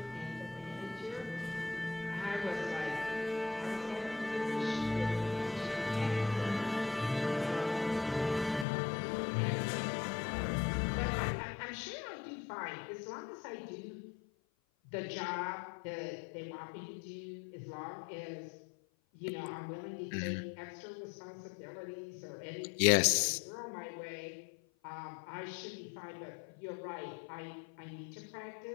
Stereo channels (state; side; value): drops out; right; at 8.7 s